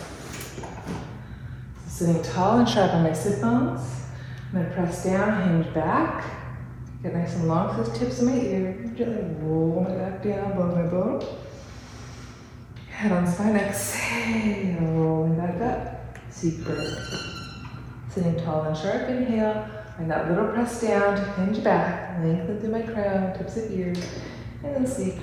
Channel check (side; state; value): both; identical; correlation 1.00